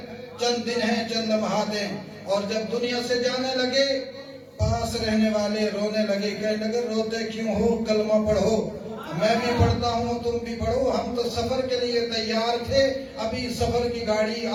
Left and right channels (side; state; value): both; identical; correlation 1.00